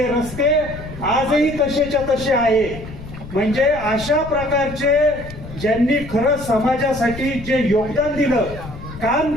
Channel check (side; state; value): left; noise; rumble, 13 dB below the sound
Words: रस्ते आजही तसेच्या तसे आहे. म्हणजे अशा प्रकारचे ज्यांनी खरं समाजासाठी जे योगदान दिलं, काम